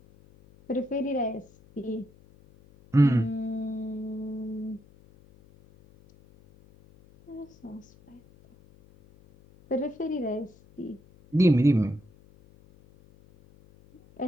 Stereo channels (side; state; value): left; noise; hum, 26 dB below the sound